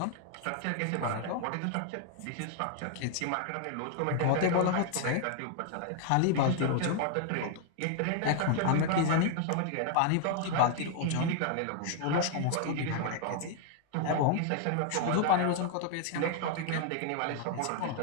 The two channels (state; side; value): different; both; correlation 0.00